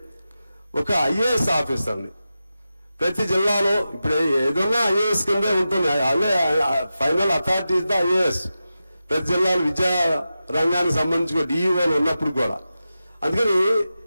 ఒక ఐఏఎస్ ఆఫీసర్ని ప్రతి జిల్లాలో, ఇప్పుడు ఏదన్నా ఐఏఎస్ కిందే ఉంటుంది, అదే final authority is the IAS. ప్రతి జిల్లాలో విద్యా రంగానికి సంబంధించి డిఈఓలు ఉన్నప్పుడు కూడా. అందుకని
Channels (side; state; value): both; inverted; correlation -0.92